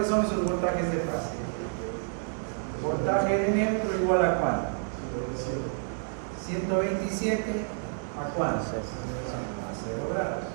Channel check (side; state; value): left; silent; digital silence